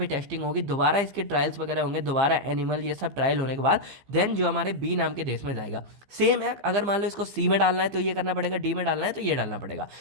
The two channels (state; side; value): late; left; 15 ms